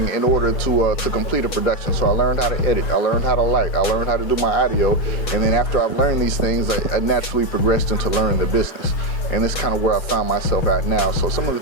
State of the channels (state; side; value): late; right; 6.2 ms